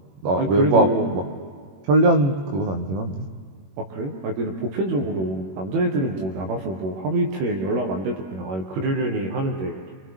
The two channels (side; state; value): left; late; 21 ms